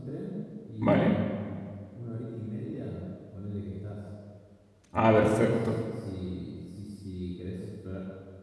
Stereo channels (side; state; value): both; identical; correlation 1.00